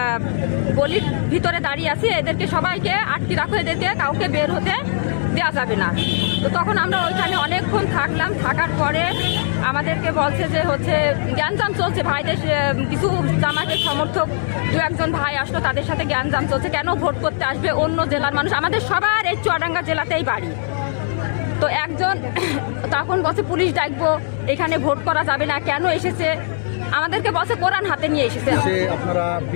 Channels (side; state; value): right; silent; digital silence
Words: গলির ভিতরে দাঁড়িয়ে আছি, এদেরকে সবাইকে আটকে রাখো, এদেরকে কাউকে বের হতে দেওয়া যাবে না। তো তখন আমরা ওইখানে অনেকক্ষণ থাকলাম। থাকার পরে আমাদেরকে বলছে যে জ্ঞানজাম চলছে, ভাইদের কিছু জামাতের সমর্থক দু একজন ভাই আসলো, তাদের সাথে জ্ঞানজাম চলছে, কেন ভোট করতে আসবে অন্য জেলার মানুষ, আমাদের সবার এই চুয়াডাঙ্গা জেলাতেই বাড়ি। তো একজন তখন বলছে পুলিশ ডাকবো, এখানে ভোট করা যাবে না, কেন এসেছে আমাদেরকে বলছে কোরআন হাতে নিয়ে এসেছে। আপনারা